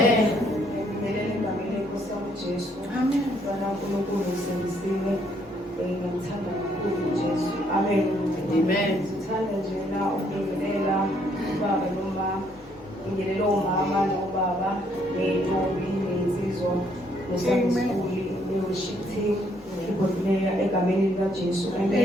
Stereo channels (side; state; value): both; normal; correlation 0.69